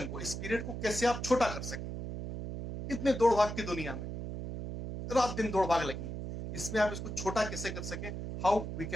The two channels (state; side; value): noise; right; hum, 6 dB below the sound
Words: को, इस पीरियड को कैसे आप छोटा कर सकें। इतने दौड़ भाग की दुनिया में रात दिन दौड़ भाग लगी है, इसमें आप इसको छोटा कैसे कर सकें। How we